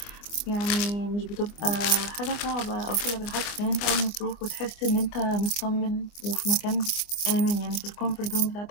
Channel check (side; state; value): right; late; 24 ms